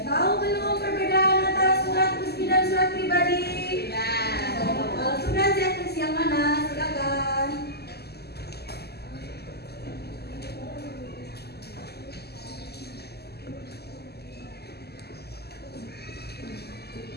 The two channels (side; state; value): right; late; 0.47 ms